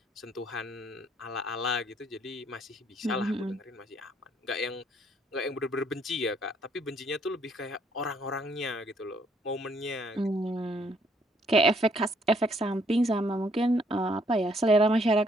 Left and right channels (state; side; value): normal; both; correlation 0.67